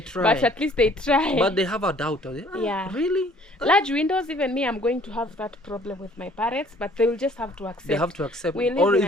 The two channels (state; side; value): normal; both; correlation 0.57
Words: But at least they try. But they have a doubt. Really? Large windows, even me, I'm going to have that problem with my parents, but they will just have to accept. They have to accept. We live or in